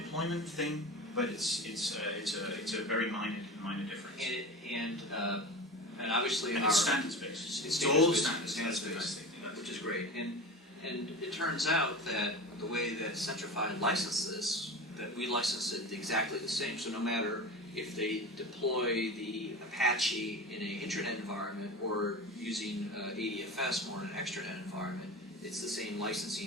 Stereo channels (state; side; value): normal; both; correlation 0.30